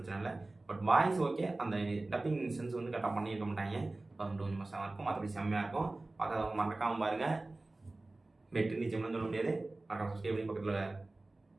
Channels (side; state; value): left; quieter; 3.0 dB